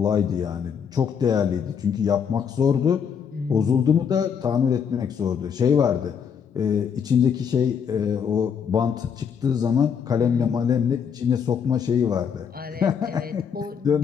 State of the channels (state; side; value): quieter; right; 7.2 dB